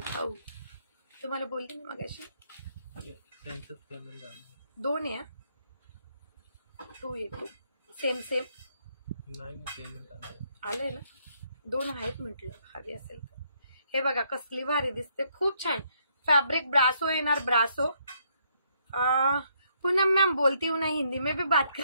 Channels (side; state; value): both; inverted; correlation -0.72